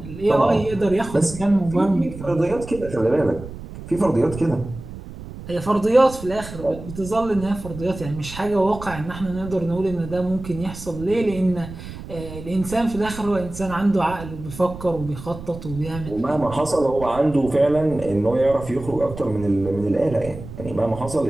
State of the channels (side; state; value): right; noise; rumble, 12 dB below the sound